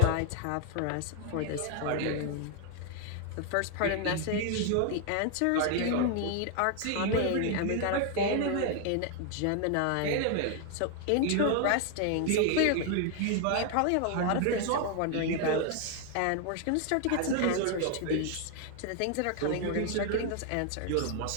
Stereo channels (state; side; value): different; both; correlation 0.00